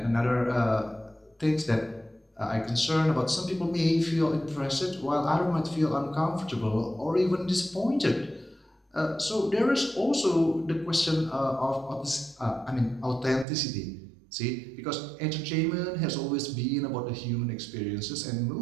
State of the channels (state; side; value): drops out; left; at 13.5 s